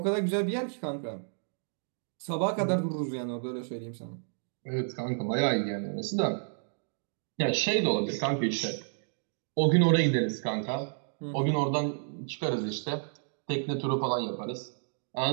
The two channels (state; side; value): silent; left; digital silence